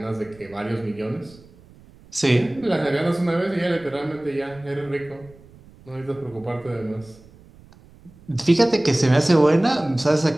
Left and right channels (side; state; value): right; noise; rumble, 24 dB below the sound